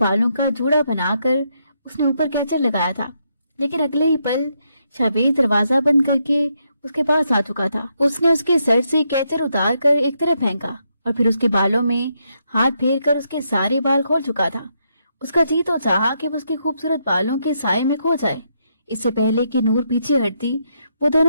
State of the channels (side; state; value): both; inverted; correlation -0.78